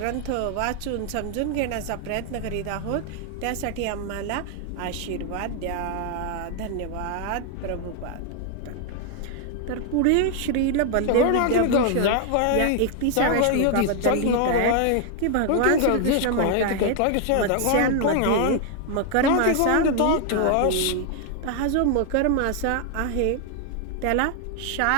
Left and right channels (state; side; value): different; both; correlation 0.00